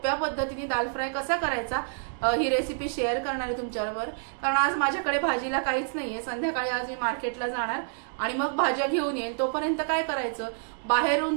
पद्धतीने दाल फ्राय कसा करायचा ही रेसिपी शेअर करणार आहे तुमच्याबरोबर। कारण आज माझ्याकडे भाजीला काहीच नाहीये, संध्याकाळी आज मी मार्केटला जाणार आणि मग भाज्या घेऊन येईन। तोपर्यंत काय करायचं,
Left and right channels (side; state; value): left; silent; digital silence